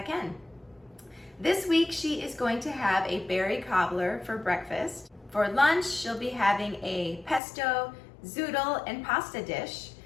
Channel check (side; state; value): right; drops out; at 7.4 s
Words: can. This week she is going to have a berry cobbler for breakfast. For lunch she'll be having a pesto, zoodle, and pasta dish.